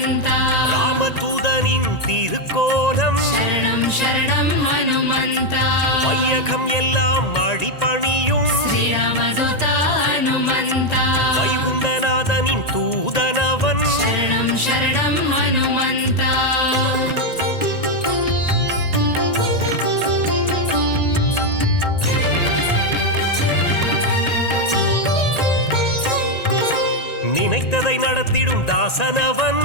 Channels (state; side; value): late; right; 1.9 ms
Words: ராமதூதனின் திருக்கோலம் शरणं शरणं हनुमन्त வையகம் எல்லாம் அடிபணியும் श्रीरामदूत हनुमन्त வைகுண்டநாதனின் தூதனவன் शरणं शरणं हनुमन्त நினைத்ததை நடத்திடும் தாசனவன்